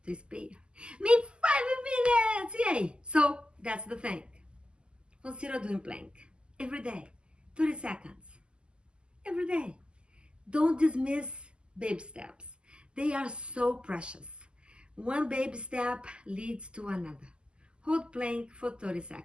to spare. Maybe 5 minutes. Yay! So that's the thing. Consider doing plank every day, 30 seconds. Every day. Don't dismiss baby steps. They are so precious. One baby step leads to another. Hold plank for 30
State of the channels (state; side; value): late; left; 0.050 ms